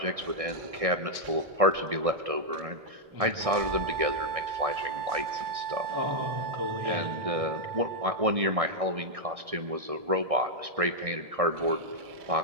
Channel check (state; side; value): late; left; 1.6 ms